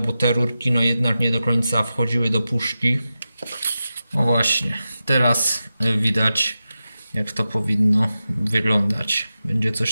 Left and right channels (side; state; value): both; inverted; correlation -0.92